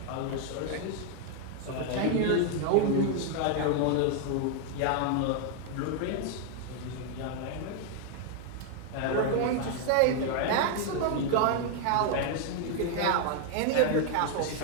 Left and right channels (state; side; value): different; both; correlation 0.00